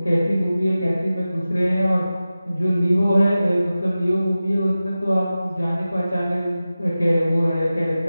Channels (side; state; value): both; inverted; correlation -0.95